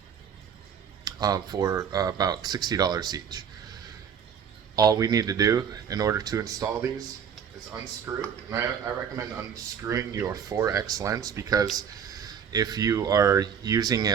for about $60 each. All we need to do in order to install these is unscrew, and I recommend unscrewing your 4X lens, because if you are using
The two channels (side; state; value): left; quieter; 7.6 dB